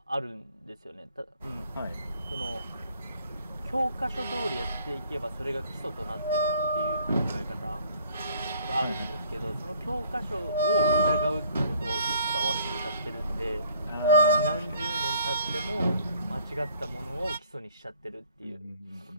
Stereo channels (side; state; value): both; inverted; correlation -0.58